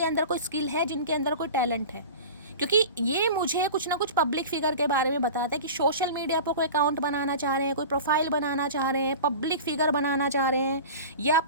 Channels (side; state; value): both; inverted; correlation -0.35